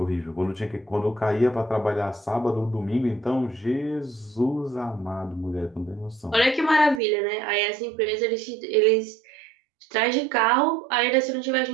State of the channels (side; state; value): left; drops out; at 7.0 s